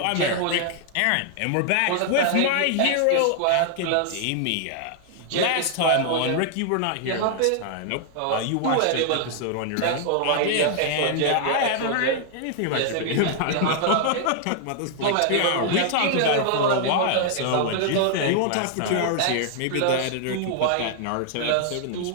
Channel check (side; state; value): both; different; correlation 0.00